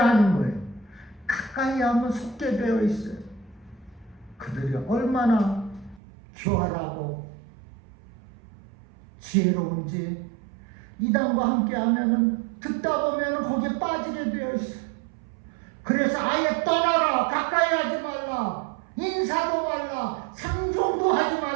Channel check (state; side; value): drops out; left; at 6.0 s